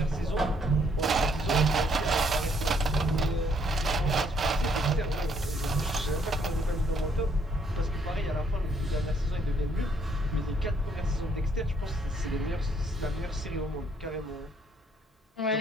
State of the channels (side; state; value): both; normal; correlation 0.68